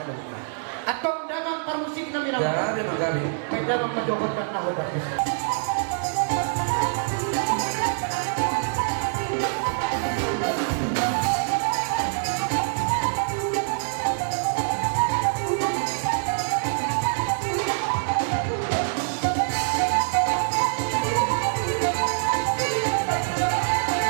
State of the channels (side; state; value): left; silent; digital silence